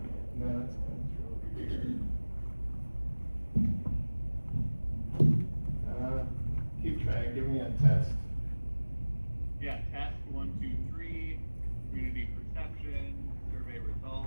No, it's coming through. Keep trying, give me a test. Yeah, test 1, 2, 3, community perception, survey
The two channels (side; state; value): both; inverted; correlation -1.00